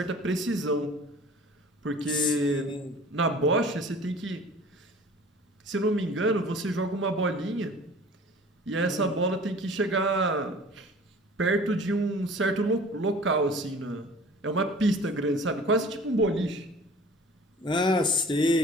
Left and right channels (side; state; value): both; normal; correlation 0.45